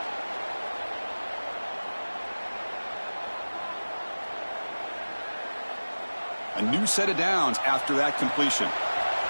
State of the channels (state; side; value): inverted; both; correlation -1.00